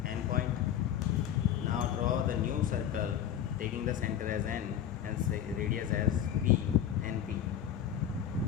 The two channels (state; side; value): quieter; right; 9.9 dB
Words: point. Now draw the new circle taking the center as N and say radius as P, NP.